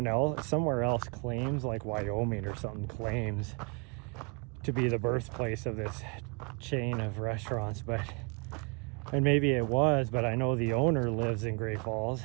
else claims, like Wyoming or something, claims to be the birthplace of this chain of restaurants, and maybe it was, but I know the owner lives in Great Falls,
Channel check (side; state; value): left; quieter; 34.3 dB